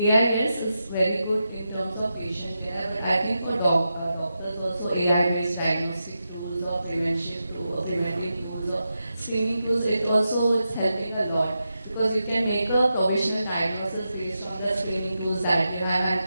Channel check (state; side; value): inverted; both; correlation -0.88